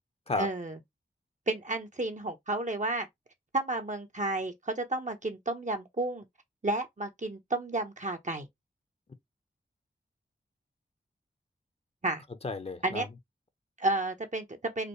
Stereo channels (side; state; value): both; normal; correlation 0.23